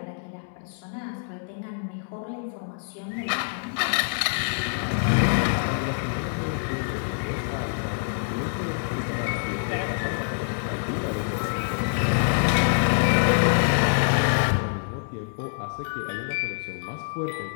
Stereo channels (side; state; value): right; silent; 61 dB below the other